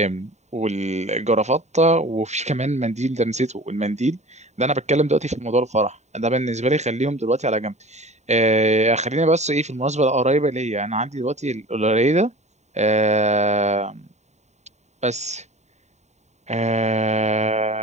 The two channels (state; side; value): late; left; 0.33 ms